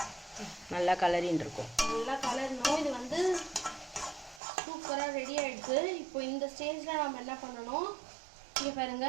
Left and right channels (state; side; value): drops out; left; at 4.4 s